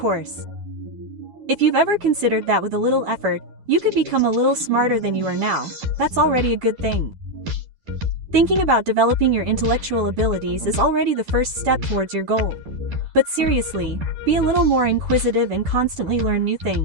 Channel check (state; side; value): late; left; 10 ms